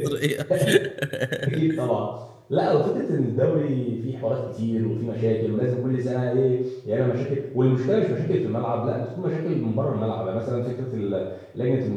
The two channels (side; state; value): both; identical; correlation 1.00